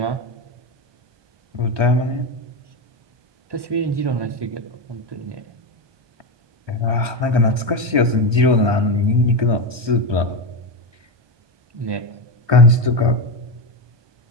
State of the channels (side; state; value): left; late; 1.2 ms